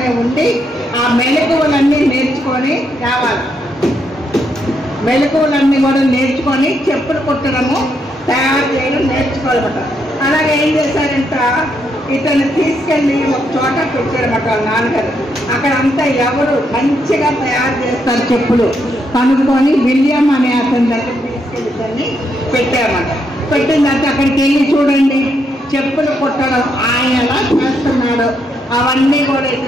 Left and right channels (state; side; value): normal; both; correlation 0.78